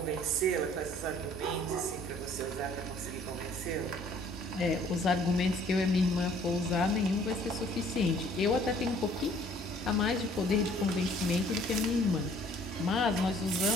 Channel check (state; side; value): normal; both; correlation 0.57